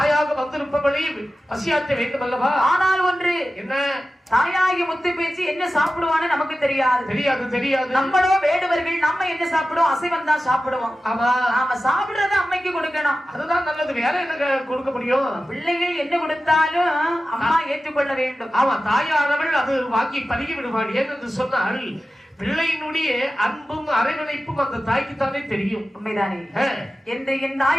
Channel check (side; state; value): both; normal; correlation 0.94